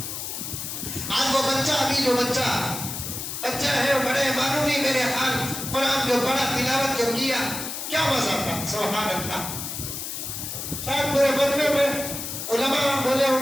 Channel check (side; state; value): left; noise; hiss, 6 dB below the sound